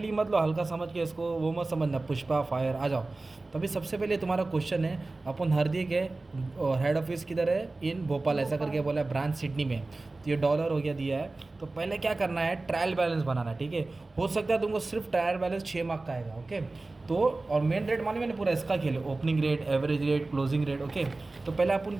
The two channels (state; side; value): quieter; left; 3.2 dB